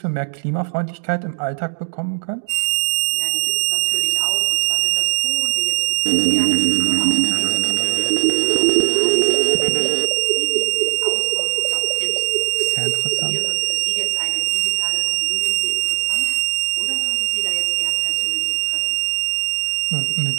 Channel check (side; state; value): left; silent; digital silence